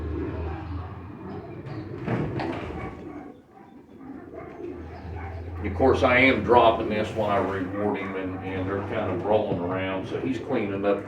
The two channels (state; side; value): identical; both; correlation 1.00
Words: Of course, I am dropping this when I reward him, and they're kind of rolling around, so he's cleaning up the